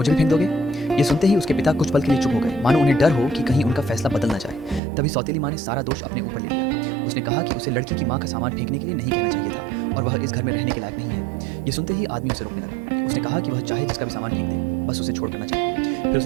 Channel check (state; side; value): drops out; left; at 4.8 s